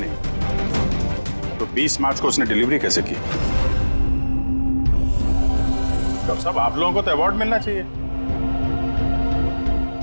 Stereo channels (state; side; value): inverted; both; correlation -1.00